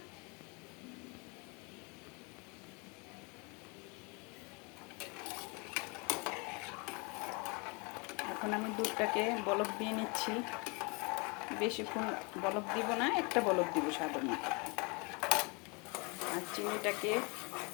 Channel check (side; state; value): right; quieter; 30.7 dB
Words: এখন আমি দুধটাকে বলক দিয়ে নিচ্ছি। বেশিক্ষণ বলক দিব না, একটা বলক দিব সাধারণ। আর চিনিটাকে